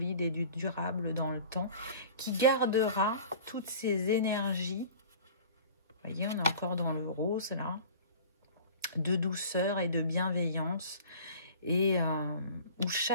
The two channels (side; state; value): both; inverted; correlation -0.42